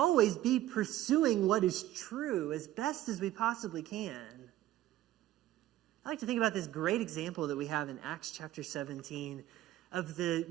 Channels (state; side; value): quieter; left; 14.1 dB